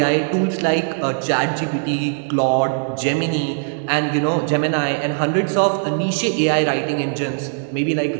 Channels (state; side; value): silent; left; digital silence